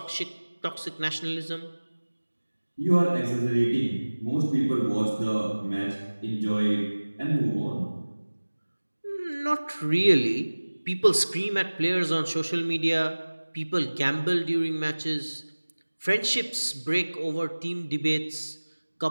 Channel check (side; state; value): both; inverted; correlation -1.00